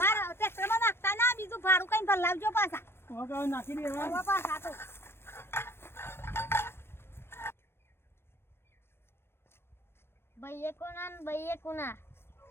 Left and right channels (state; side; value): late; right; 0.12 ms